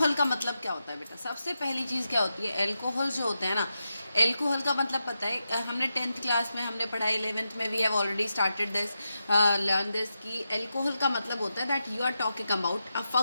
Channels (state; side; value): inverted; both; correlation -0.88